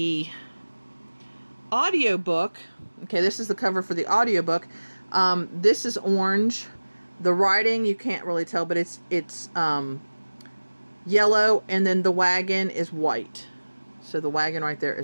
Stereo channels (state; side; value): inverted; both; correlation -1.00